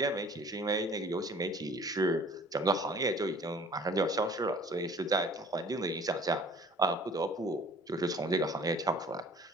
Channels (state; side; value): normal; both; correlation 0.49